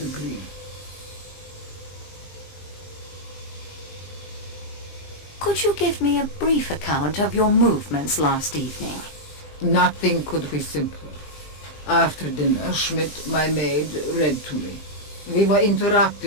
Could you give me a brief account of your movements last evening? Nothing could be simpler. After dinner, Schmidt, my maid, read to me. We were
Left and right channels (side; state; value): right; late; 20 ms